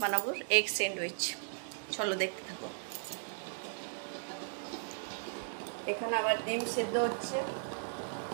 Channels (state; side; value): silent; left; digital silence